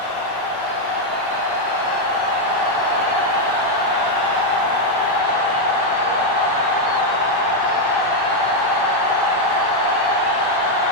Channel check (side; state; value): right; late; 9.4 ms